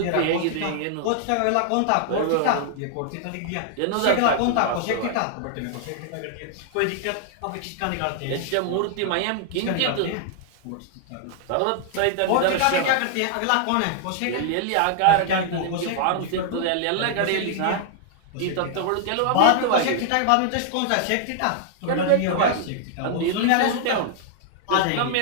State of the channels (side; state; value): both; different; correlation 0.00